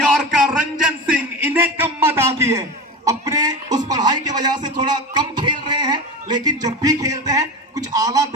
Ranjan Singh, इन्हें कम मत आती है। अपने उस पढ़ाई की वजह से थोड़ा कम खेल रहे हैं, लेकिन जब भी खेलते हैं कुछ आला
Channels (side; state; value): both; normal; correlation 0.26